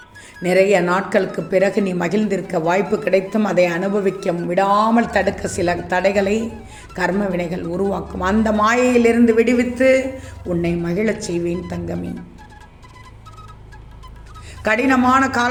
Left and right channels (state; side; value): identical; both; correlation 1.00